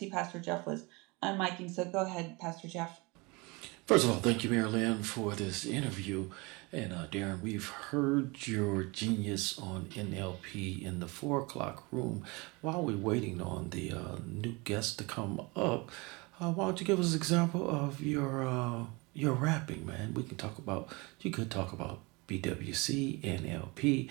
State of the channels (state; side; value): quieter; left; 26.4 dB